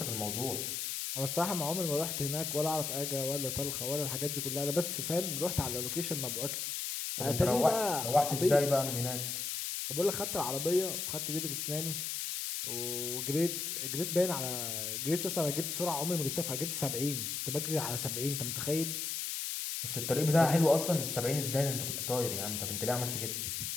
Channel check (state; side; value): noise; left; hiss, 2 dB below the sound